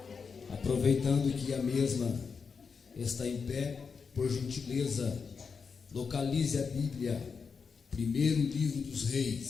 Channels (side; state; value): right; quieter; 5.6 dB